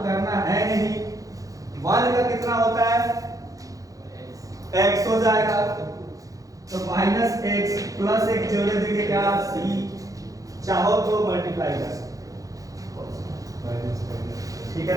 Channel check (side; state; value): left; late; 0.17 ms